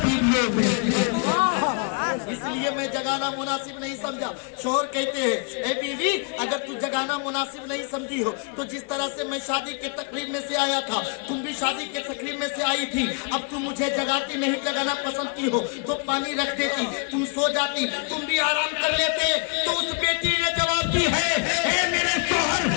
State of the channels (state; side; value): quieter; right; 39.3 dB